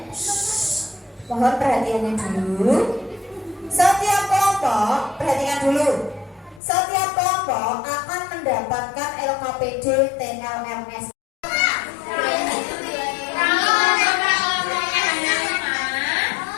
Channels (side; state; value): right; drops out; at 6.6 s